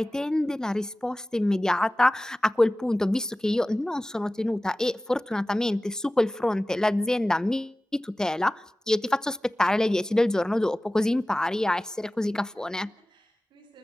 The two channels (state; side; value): normal; both; correlation 0.97